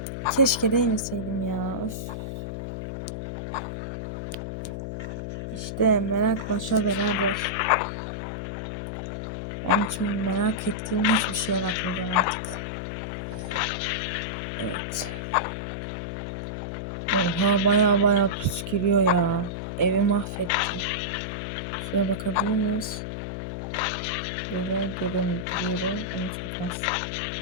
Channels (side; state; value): left; noise; hum, 5 dB below the sound